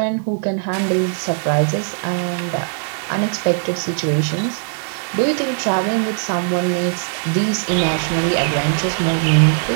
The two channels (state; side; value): silent; left; digital silence